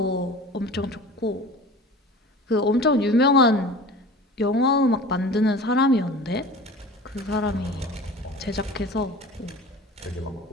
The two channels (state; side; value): normal; both; correlation 0.39